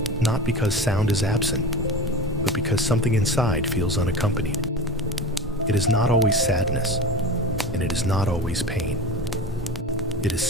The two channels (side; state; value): both; normal; correlation 0.31